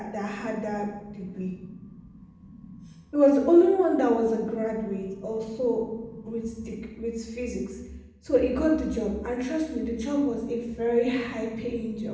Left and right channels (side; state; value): both; identical; correlation 1.00